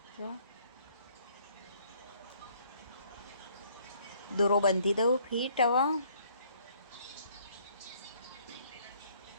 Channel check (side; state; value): both; inverted; correlation -0.63